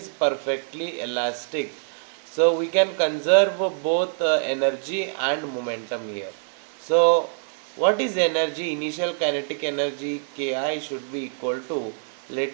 perfectly elastic, so we can conserve both energy and momentum here. So what is energy? Initial kinetic energy Ki should be equal to,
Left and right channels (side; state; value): left; silent; digital silence